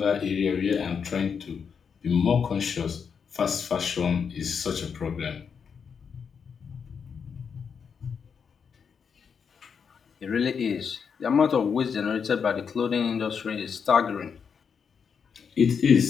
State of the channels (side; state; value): right; quieter; 6.5 dB